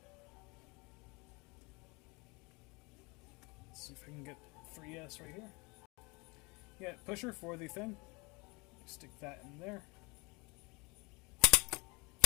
let's see if I can get 3S right here. Yeah, pusher for the thing. Stick that in there.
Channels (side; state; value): right; quieter; 27.4 dB